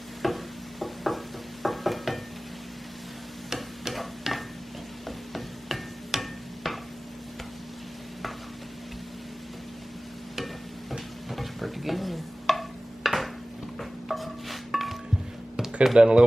Looks pretty good. Could have done a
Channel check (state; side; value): normal; both; correlation 0.98